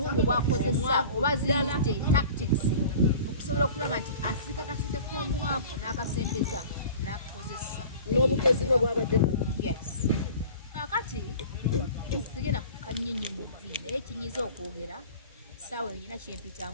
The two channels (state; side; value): inverted; both; correlation -0.42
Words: bwakozesa oba ziyite tactics okusobola okulaba nti asika kasente k'omwavu n'akasembeza n'akakozesa n'obukozi bwe bwabadde yes kati sigenda kukanyinyo mu vi naye kinyiza okwogera saawa eyo nyina